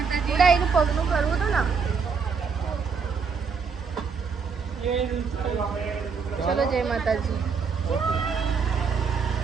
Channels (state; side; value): quieter; left; 5.6 dB